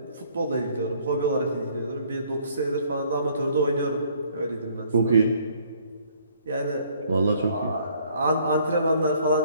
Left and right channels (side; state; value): both; inverted; correlation -0.62